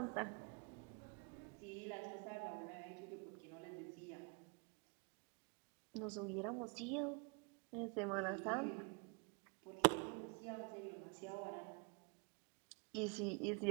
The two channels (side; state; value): left; quieter; 33.9 dB